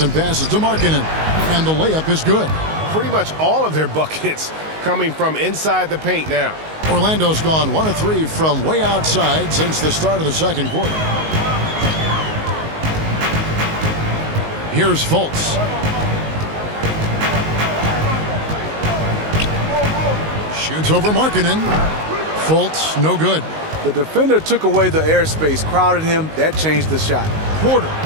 passes to Markkanen, and the layup is good. Pretty much all of their buckets coming from inside the paint now. Orlando's gone 1 of 3 from way outside since the start of the second quarter. Here's Fultz. Shoots over Markkanen. Fultz, no good. The defender took away the airspace, crowded him. That changed the shot. Porter.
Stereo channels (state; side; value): late; left; 19 ms